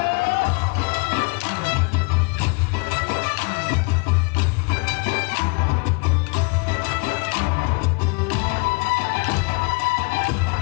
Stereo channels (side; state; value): right; quieter; 32.6 dB